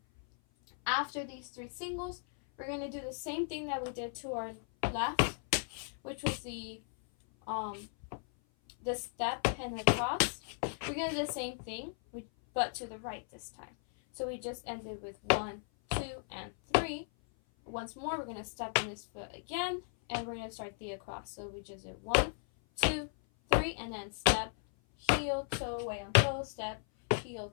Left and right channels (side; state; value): right; silent; 54 dB below the other